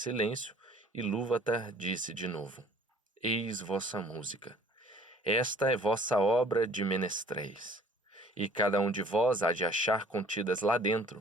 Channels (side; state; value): both; normal; correlation 0.52